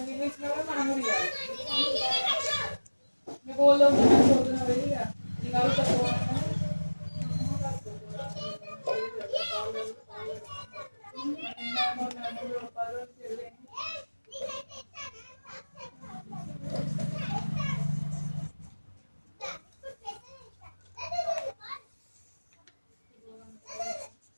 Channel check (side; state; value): both; inverted; correlation -1.00